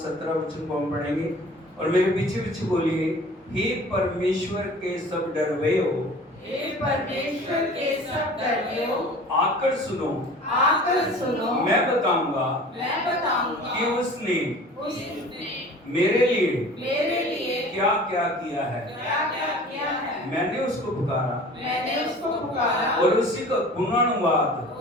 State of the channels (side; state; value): both; normal; correlation 0.44